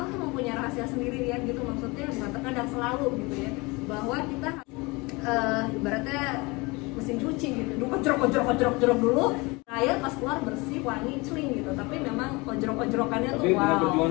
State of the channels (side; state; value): right; quieter; 25.2 dB